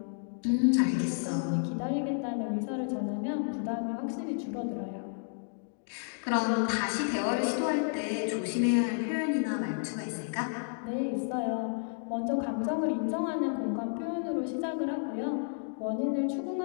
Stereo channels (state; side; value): silent; right; digital silence